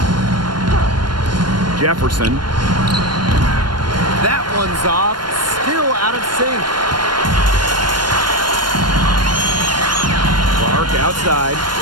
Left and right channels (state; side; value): late; left; 0.71 ms